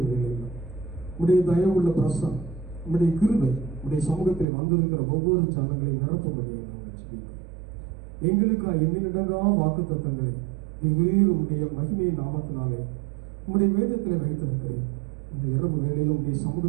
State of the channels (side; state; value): left; drops out; at 4.5 s